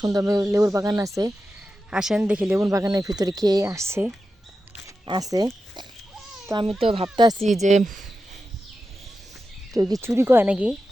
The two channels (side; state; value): both; normal; correlation 0.91